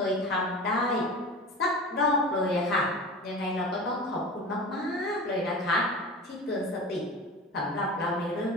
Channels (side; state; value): both; normal; correlation 0.33